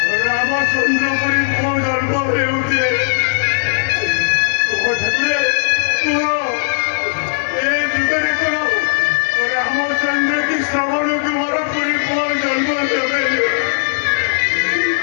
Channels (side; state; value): right; silent; digital silence